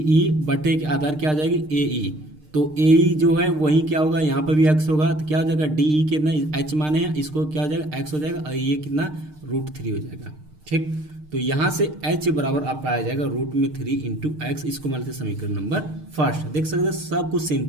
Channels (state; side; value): late; left; 6.6 ms